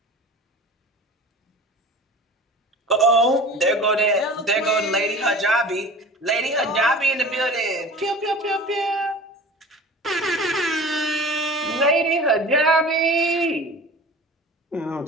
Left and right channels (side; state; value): both; normal; correlation 0.39